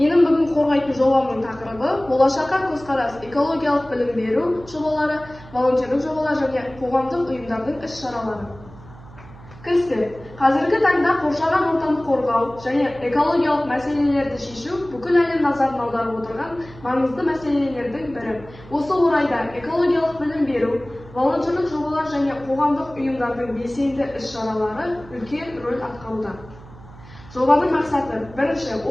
бүгін қорғайтын жобамның тақырыбы болашаққа көзқарас, экологиялық білім беру жобалары, волонтерлік жобалар және қоғамдық ұйымдардың іс-шаралары. Кіріспе. Қазіргі таңда қоршаған ортаны қорғау және экологиялық мәселелерді шешу бүкіл әлем назарын аударып отырған маңызды мәселелердің бірі. Осы орайда экологиялық білім беру, волонтерлік жобалар және қоғамдық ұйымдардың белсенді іс-шаралары үлкен рөл атқаруда. Жобаның мақсаты: бірінші,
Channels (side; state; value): right; noise; hum, 19 dB below the sound